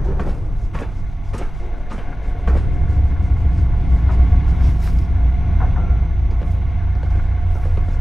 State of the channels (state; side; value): normal; both; correlation 0.96